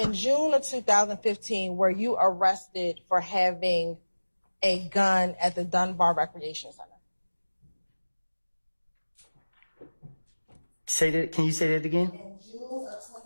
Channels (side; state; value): both; inverted; correlation -1.00